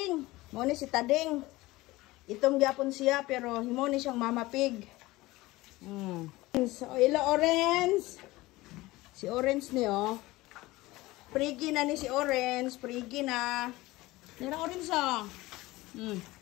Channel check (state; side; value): quieter; right; 19.5 dB